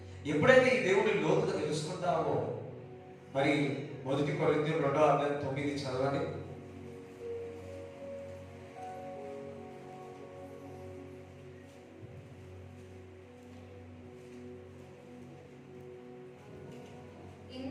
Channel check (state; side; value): identical; both; correlation 1.00